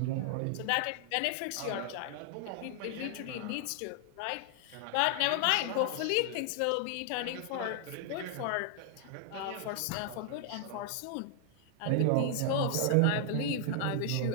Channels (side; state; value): both; different; correlation 0.00